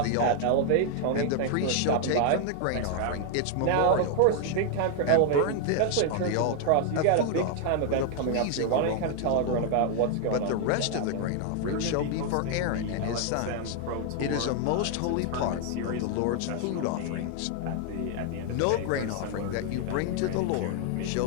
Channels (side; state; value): both; different; correlation 0.00